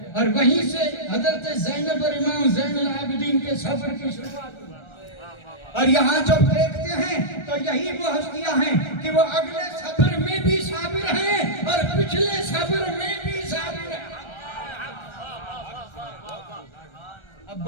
اور وہیں سے حضرت زینب اور امام زین العابدین کے صبر کی شروعات ہوئی۔ اور یہاں جب دیکھتے ہیں تو یہی وہ ہستیاں ہیں کہ وہ اگلے صبر میں بھی صابر ہیں اور پچھلے صبر میں بھی صابر ہیں۔ اب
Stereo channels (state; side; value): late; right; 1.3 ms